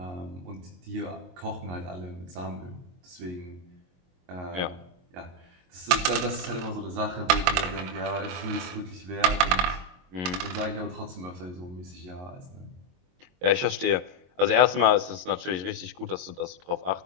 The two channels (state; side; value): late; left; 22 ms